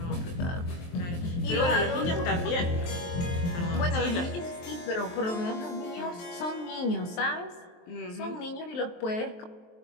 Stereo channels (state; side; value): late; right; 23 ms